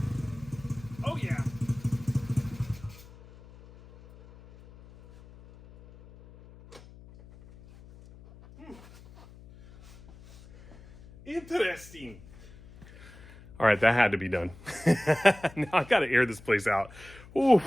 Oh yeah. Interesting. All right, that had to be done. Now I gotta air this place out.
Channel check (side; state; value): left; noise; hum, 21 dB below the sound